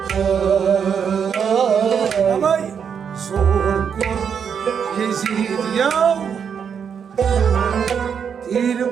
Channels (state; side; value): quieter; left; 7.2 dB